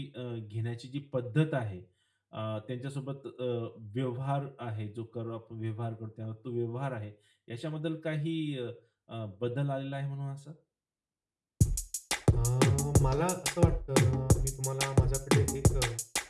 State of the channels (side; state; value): both; identical; correlation 1.00